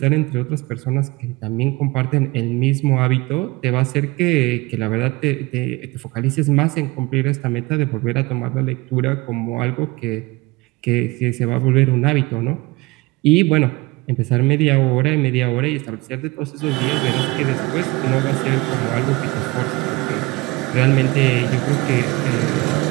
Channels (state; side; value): quieter; left; 23.1 dB